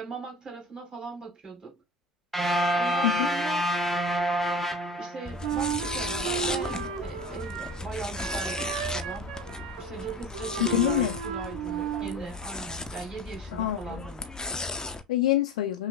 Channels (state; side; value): normal; both; correlation 0.33